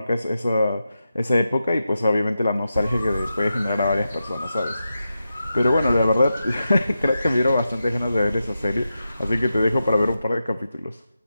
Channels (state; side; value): inverted; both; correlation -0.90